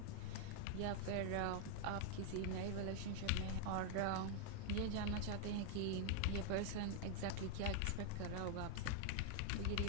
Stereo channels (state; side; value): different; both; correlation 0.00